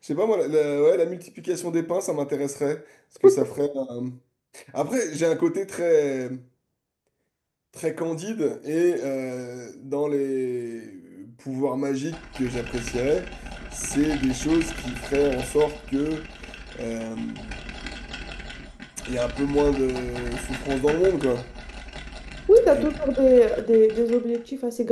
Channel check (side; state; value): both; identical; correlation 1.00